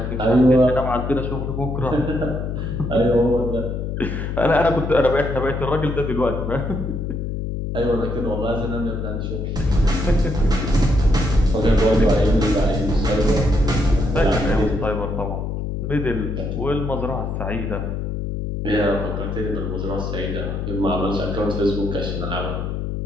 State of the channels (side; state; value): left; noise; hum, 3 dB below the sound